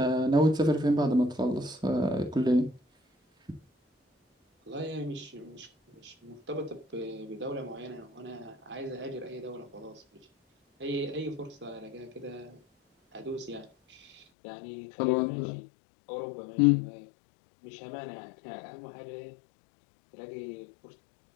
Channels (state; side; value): drops out; right; at 14.2 s